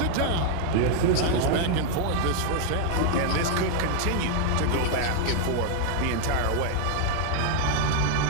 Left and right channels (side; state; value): both; different; correlation 0.00